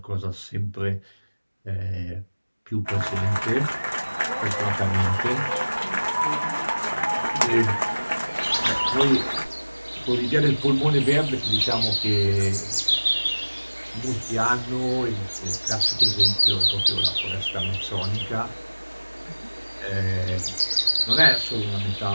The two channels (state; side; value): inverted; both; correlation -1.00